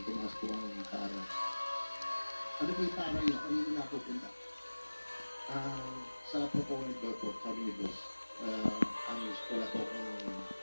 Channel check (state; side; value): inverted; both; correlation -1.00